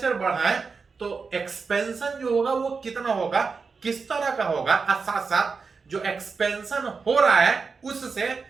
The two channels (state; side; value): quieter; left; 4.9 dB